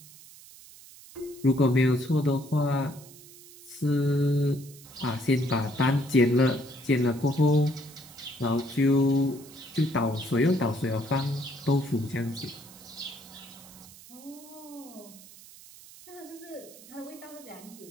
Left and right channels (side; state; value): right; noise; hiss, 20 dB below the sound